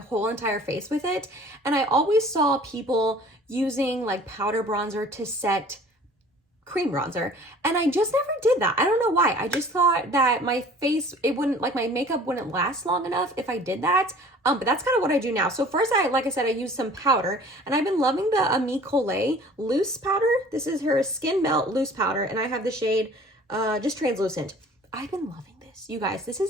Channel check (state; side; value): normal; both; correlation 0.48